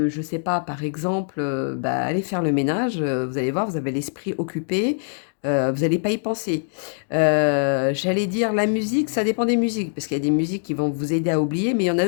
je sais pas, par exemple, bah, aller faire le ménage, vous allez voir, vous avez l'esprit occupé, vous n'allez pas y penser. J'allais dire la musique, ça dépend des musiques, parce qu'il y a des musiques qui vont vous aider à oublier, mais il y en a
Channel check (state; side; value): silent; right; digital silence